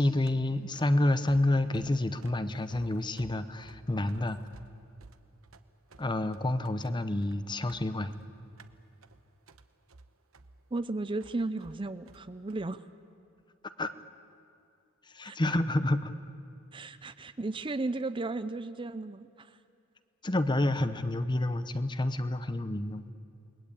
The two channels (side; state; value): both; normal; correlation 0.85